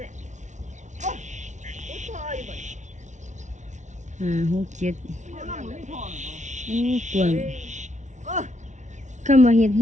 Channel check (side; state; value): left; late; 0.35 ms